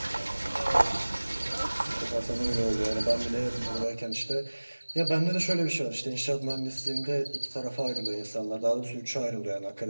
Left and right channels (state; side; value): inverted; both; correlation -1.00